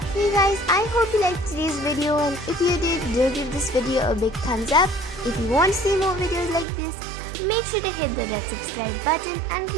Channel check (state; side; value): drops out; left; at 6.7 s